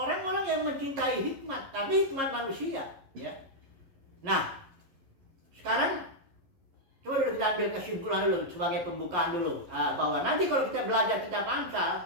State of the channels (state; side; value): late; left; 11 ms